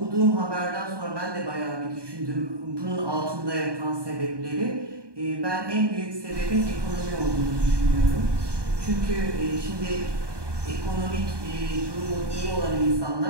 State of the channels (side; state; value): left; late; 1.2 ms